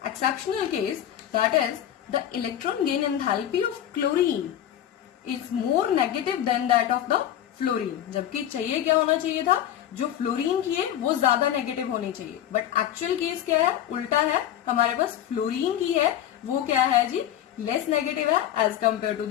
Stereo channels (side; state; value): right; quieter; 11.1 dB